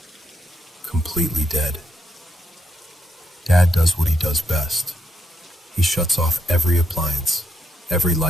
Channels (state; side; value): normal; both; correlation 0.79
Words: completely dead. Dad does what he does best. He shuts off every appliance, every